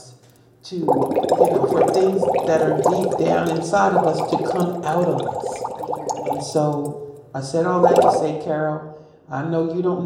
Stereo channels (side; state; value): both; identical; correlation 1.00